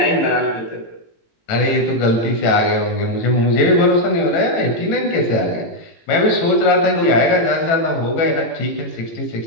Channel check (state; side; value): late; right; 18 ms